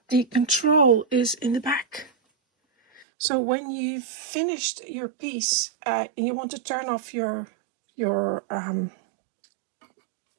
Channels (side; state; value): left; drops out; at 3.1 s